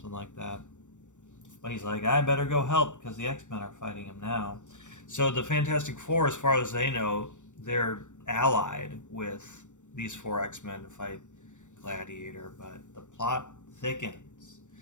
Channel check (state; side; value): late; right; 0.85 ms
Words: like that. But he's like, I better go help because the X-Men are fighting him now. So the Fantastic Four, as far as they know, they're allied with these 4 X-Men to fight Gladiator, but the plot thickens.